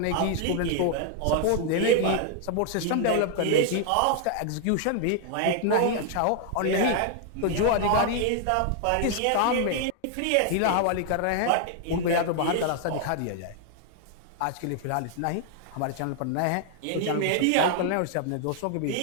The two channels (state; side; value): different; both; correlation 0.00